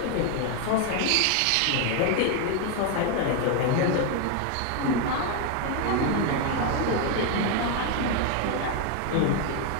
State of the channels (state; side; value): different; both; correlation 0.01